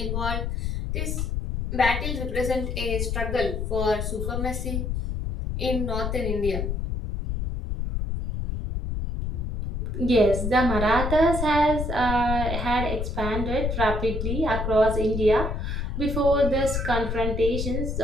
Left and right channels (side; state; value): left; noise; rumble, 2 dB below the sound